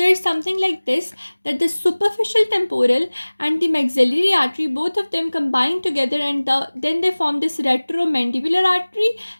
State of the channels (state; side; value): inverted; both; correlation -1.00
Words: is something like this, that the superficial temporal and the maxillary artery, both of them combine together, and then they form this retromandibular artery.